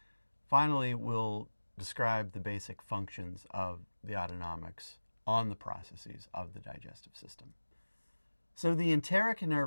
Finally, we'll describe the basic functions of the autonomics on the processes of the digestive system. So the enteric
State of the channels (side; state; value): both; inverted; correlation -1.00